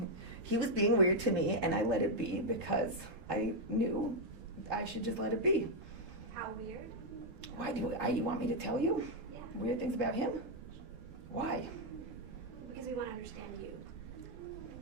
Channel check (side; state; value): left; late; 12 ms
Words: He was being weird to me, and I let it be because I knew I should just let it be. how weird? Why you want me to tell you Yeah. weird things about him? Why? Because we want to understand you.